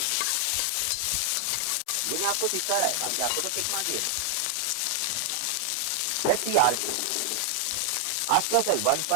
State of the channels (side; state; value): both; different; correlation 0.00